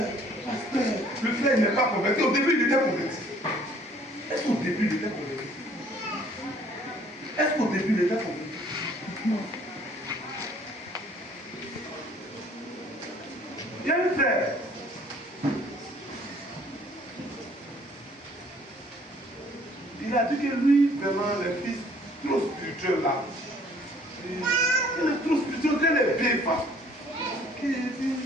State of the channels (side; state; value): both; normal; correlation 0.58